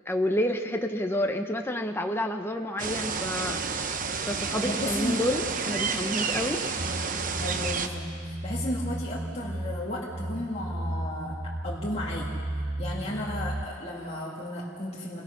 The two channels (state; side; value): normal; both; correlation 0.54